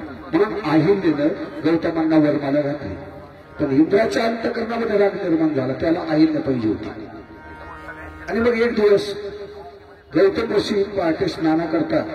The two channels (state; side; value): identical; both; correlation 1.00